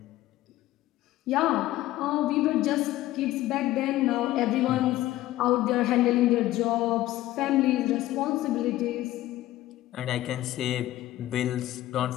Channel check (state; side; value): quieter; right; 15.4 dB